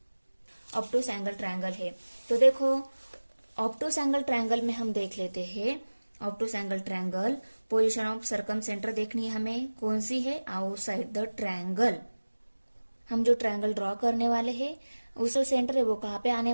ऑब्टूस एंगल ट्रायंगल है। तो देखो, ऑब्टूस एंगल ट्रायंगल में हम देख लेते हैं, obtuse angle triangle position of circumcentre देखनी है हमें, कौन सी है, आउटसाइड द ट्रायंगल। हम जो ट्रायंगल ड्रॉ करने वाले हैं उसका सेंटर है वो कहाँ पे आने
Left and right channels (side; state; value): both; inverted; correlation -1.00